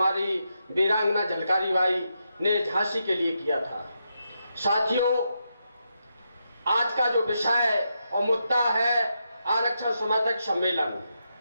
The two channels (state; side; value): inverted; both; correlation -0.84